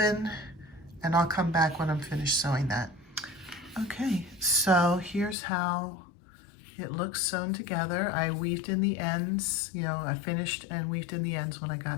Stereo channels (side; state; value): right; drops out; at 5.4 s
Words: And I'll come back when I'm finished sewing that. Okay, so here's how it looks sewn together. I weaved in the ends, you know, I finished and weaved in the ends when I